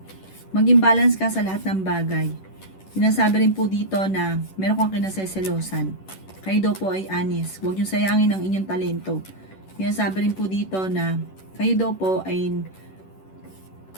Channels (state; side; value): late; right; 11 ms